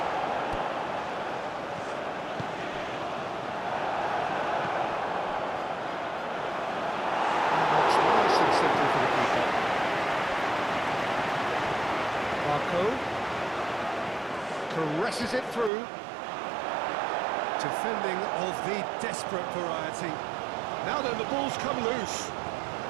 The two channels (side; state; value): left; drops out; at 15.7 s